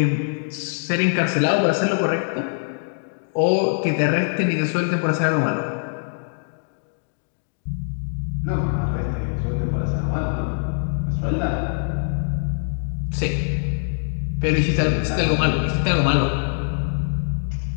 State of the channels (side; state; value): right; silent; digital silence